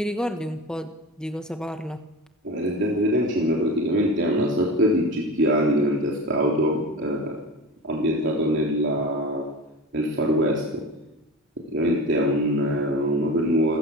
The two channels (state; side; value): normal; both; correlation 0.30